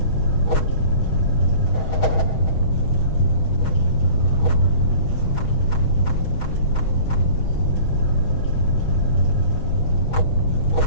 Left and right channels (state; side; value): late; right; 6.3 ms